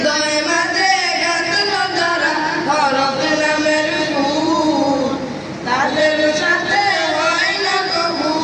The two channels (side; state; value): both; identical; correlation 1.00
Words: মাঝে গাঁথলো যারা হরফ নামের ফুল, তাদের সাথে হয় না কবু